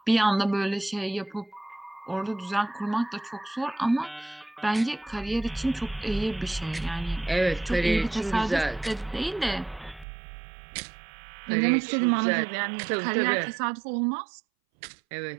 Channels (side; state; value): left; drops out; at 10.1 s